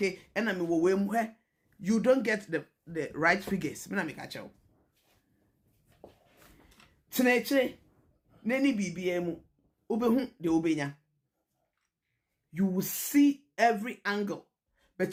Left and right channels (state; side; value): identical; both; correlation 1.00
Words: and I mean where you don't get the right figures. Me na me catch you. Teneche, neni BBM, ubehu de ubenya. You will see every angle,